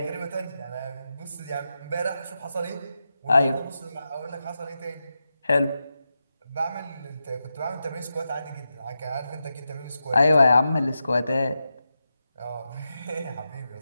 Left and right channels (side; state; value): both; inverted; correlation -0.89